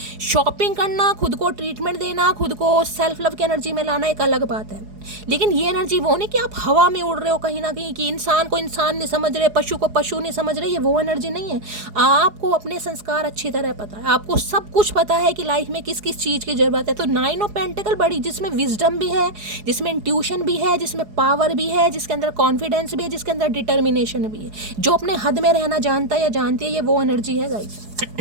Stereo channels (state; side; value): late; left; 4.8 ms